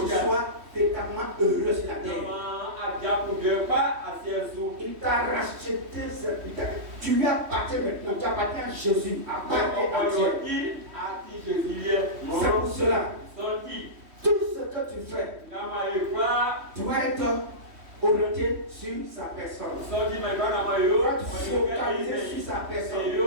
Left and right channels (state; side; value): late; left; 3.1 ms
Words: tu sois véritablement heureux sur la terre. Il t'a racheté, tu lui appartiens maintenant, tu appartiens à Jésus, appartiens à Dieu. C'est pour cela, tout ce que tu fais doit être orienté sur sa personne. Tu vas te focaliser sur sa personne.